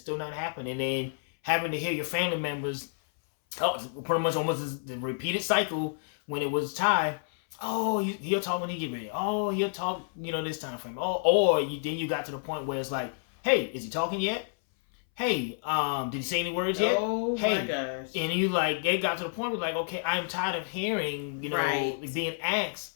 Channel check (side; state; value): right; silent; 58 dB below the other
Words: then having to hear your family members pretty much almost the repeated cycle when it was Ty. Oh, he'll talk when he get ready. Oh, he'll talk, this time frame. Oh, then you got to the point where it's like, hey, is he talking yet? Hey, did he say any words yet? Oh hey, my gosh. And you they got to the point where like, okay, I'm tired of hearing, being asked,